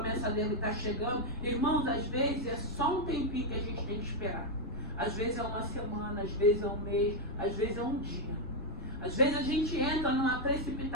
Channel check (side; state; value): left; noise; rumble, 12 dB below the sound